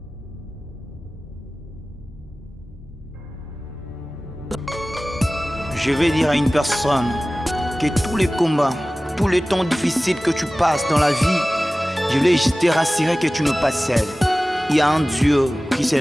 Je vais dire à une personne que tous les combats, tous les temps difficiles que tu passes dans la vie, je voulais te rassurer que tu n'es pas seul. Il y a un Dieu qui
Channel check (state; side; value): normal; both; correlation 0.97